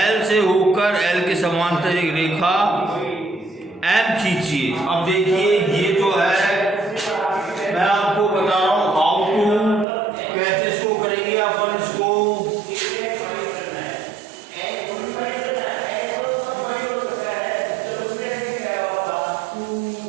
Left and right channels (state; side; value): drops out; left; at 9.9 s